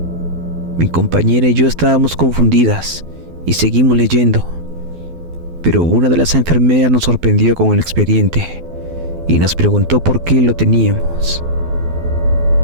Mi compañera y yo estábamos confundidas y seguimos leyendo, pero una de las enfermeras nos sorprendió con el expediente y nos preguntó por qué lo teníamos.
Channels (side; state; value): left; late; 12 ms